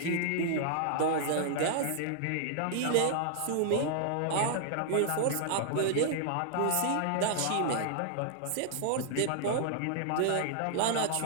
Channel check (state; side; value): different; both; correlation -0.01